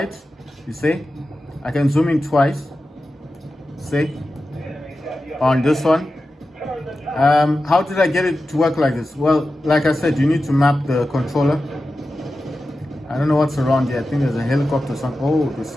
You see, I can zoom in twice. See, on this one. How did I get it to work like this? Well, like I said, you need to map the controller. I don't know what's around here. I think there's a helicopter or something. Oh, there's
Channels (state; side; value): normal; both; correlation 0.93